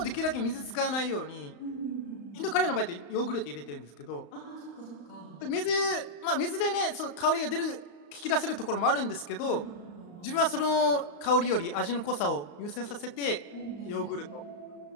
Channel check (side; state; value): right; late; 35 ms